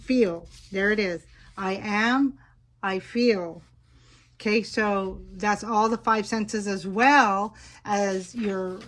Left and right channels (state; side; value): identical; both; correlation 1.00